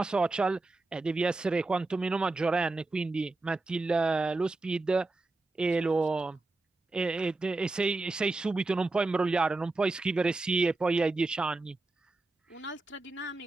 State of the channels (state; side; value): quieter; left; 3.2 dB